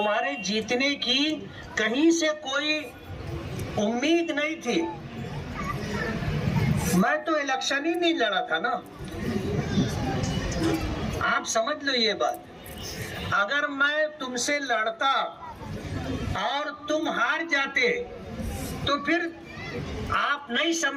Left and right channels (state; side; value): identical; both; correlation 1.00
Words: جیتنے کی کہیں سے کوئی امید نہیں تھی۔ میں تو الیکشن ہی نہیں لڑا تھا نا، آپ سمجھ لو یہ بات۔ اگر میں تم سے لڑتا اور تم ہار جاتے تو پھر آپ نہیں